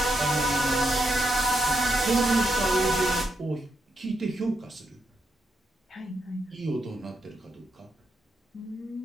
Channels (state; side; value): normal; both; correlation 0.82